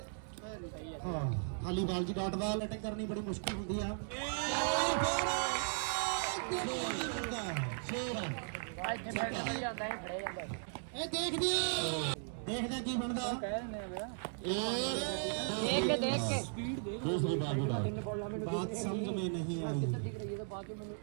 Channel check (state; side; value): silent; left; digital silence